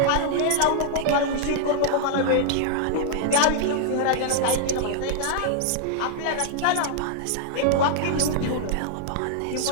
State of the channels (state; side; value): different; both; correlation -0.01